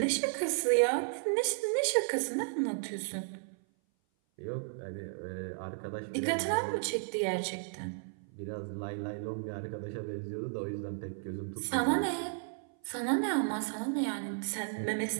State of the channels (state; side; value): silent; left; 55 dB below the other